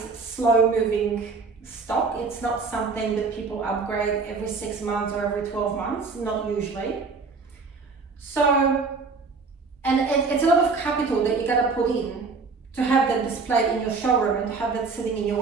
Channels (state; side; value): quieter; left; 4.5 dB